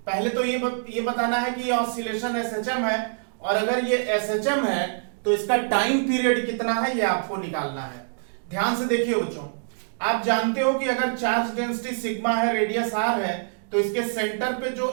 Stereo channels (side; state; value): left; silent; digital silence